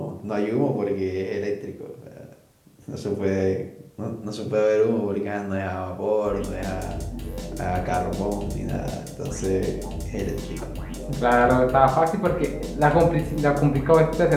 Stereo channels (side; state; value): both; identical; correlation 1.00